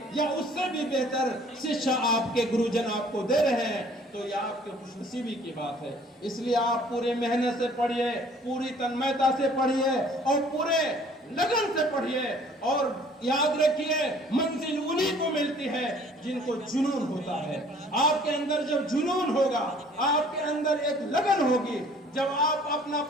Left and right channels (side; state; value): both; normal; correlation 0.55